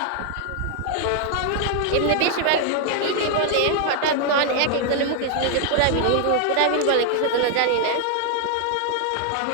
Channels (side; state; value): both; different; correlation 0.00